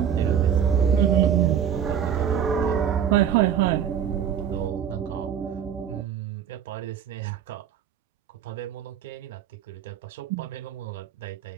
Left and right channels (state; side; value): quieter; left; 8.6 dB